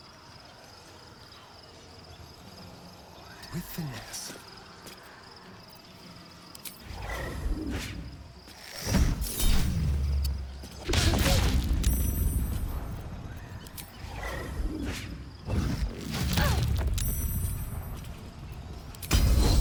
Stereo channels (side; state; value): both; identical; correlation 1.00